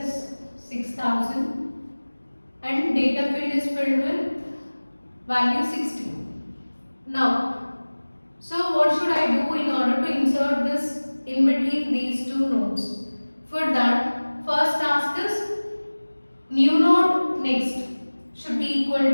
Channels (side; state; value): both; inverted; correlation -1.00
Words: 6000 and data field is filled with value 60. Now, so what should I do in order to insert this in between these two nodes? For that, first task is new node next should be equal